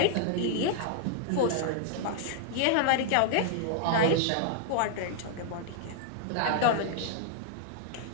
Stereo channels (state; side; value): different; both; correlation -0.01